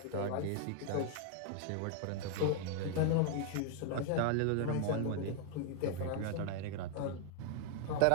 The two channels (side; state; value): both; different; correlation 0.00